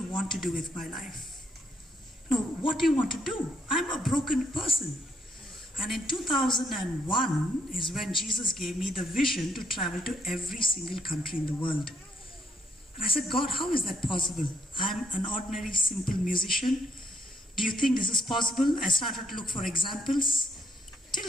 want to do with my life? No, what do you want to do? I'm a broken person. And in 2001 is when Jesus gave me the vision to travel to every single country in the world. And I said, God, how is that possible? I'm an ordinary, simple musician. Do you think this is possible? I started to look for examples.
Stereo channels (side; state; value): both; normal; correlation 0.72